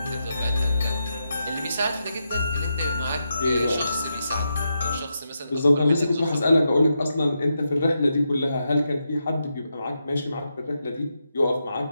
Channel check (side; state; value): both; inverted; correlation -0.85